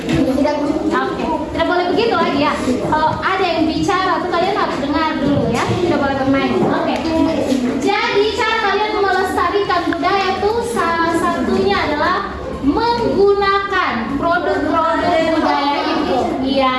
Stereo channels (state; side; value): identical; both; correlation 1.00